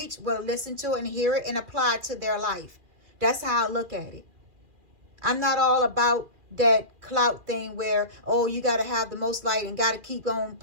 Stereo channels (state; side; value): late; left; 2.4 ms